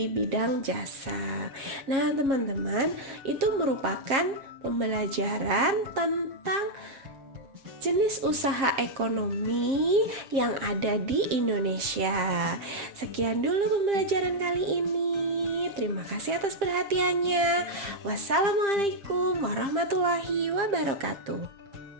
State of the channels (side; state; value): left; late; 7.5 ms